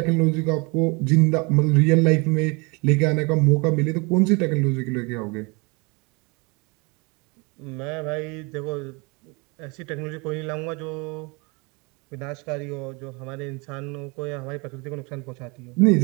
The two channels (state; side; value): quieter; left; 29.2 dB